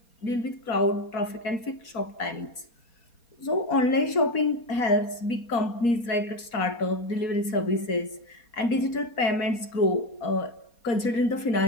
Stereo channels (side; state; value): right; late; 4.2 ms